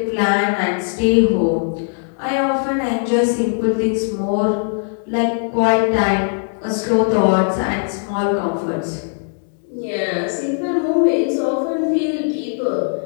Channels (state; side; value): silent; right; 66 dB below the other